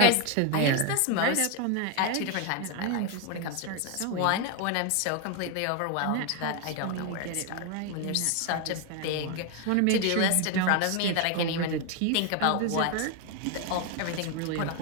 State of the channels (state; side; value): different; both; correlation 0.01